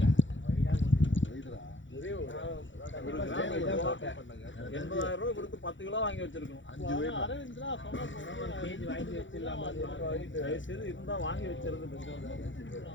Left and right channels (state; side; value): late; right; 0.55 ms